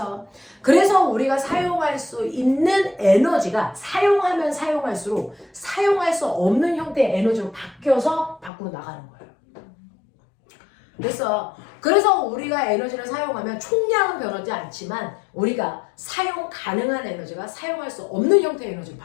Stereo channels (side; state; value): right; drops out; at 8.5 s